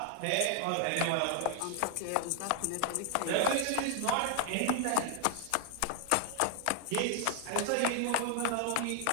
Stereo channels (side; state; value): both; different; correlation 0.00